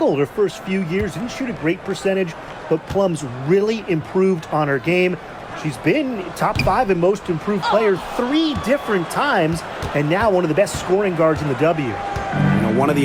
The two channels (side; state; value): both; identical; correlation 1.00